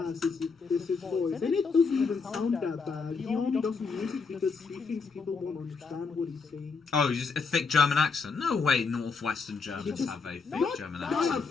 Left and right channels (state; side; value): quieter; right; 4.9 dB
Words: is his voice. And it doesn't even sound that bad. He only doesn't use it because he thinks people won't understand what he's saying. Oh, just a thick German accent? No way Northwestern Germans have a thick German accent.